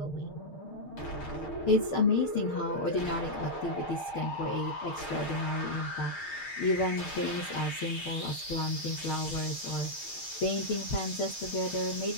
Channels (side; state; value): right; late; 6.5 ms